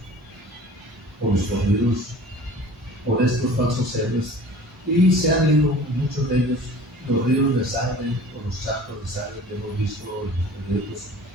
por los corridos, por estos falsos héroes, y se han ido, muchos de ellos, los ríos de sangre o los charcos de sangre que hemos visto en los periódicos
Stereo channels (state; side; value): normal; both; correlation 0.44